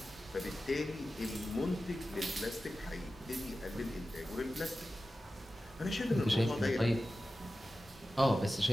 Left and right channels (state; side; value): normal; both; correlation 0.94